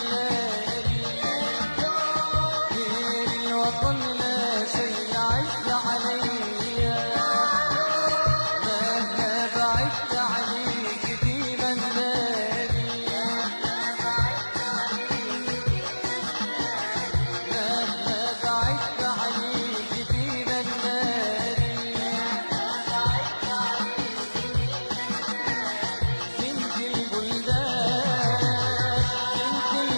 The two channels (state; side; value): inverted; both; correlation -1.00